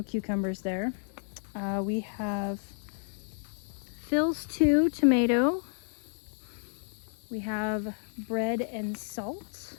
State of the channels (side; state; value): right; silent; digital silence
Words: cucumbers there. We have Phil's 2 tomato. We have bread and salt